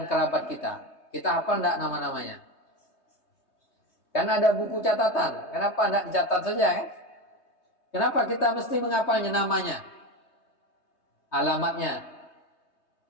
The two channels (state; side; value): late; right; 3.2 ms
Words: kerabat kita. Kita hafal enggak nama-namanya? Kan ada buku catatan. Kenapa enggak dicatat saja kan? Kenapa kita mesti menghafalnya namanya? Alamatnya.